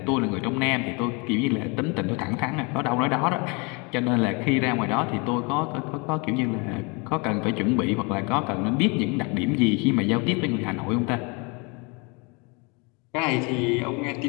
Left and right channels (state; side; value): quieter; right; 30.4 dB